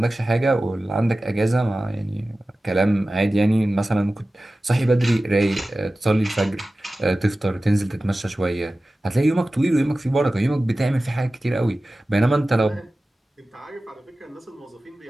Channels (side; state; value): both; normal; correlation 0.96